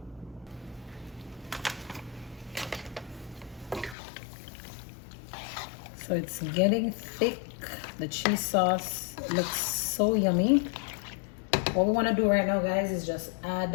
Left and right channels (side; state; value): right; drops out; at 4.0 s